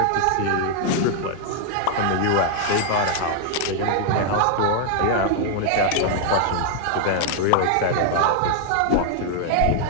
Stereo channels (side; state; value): both; different; correlation 0.00